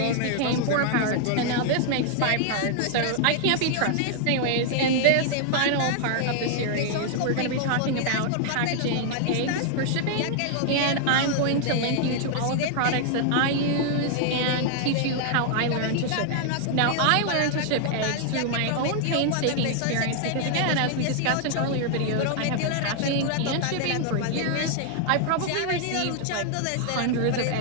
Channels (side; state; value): both; different; correlation 0.00